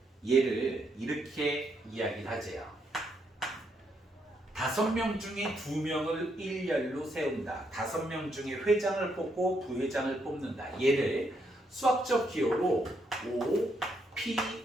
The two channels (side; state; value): both; normal; correlation 0.76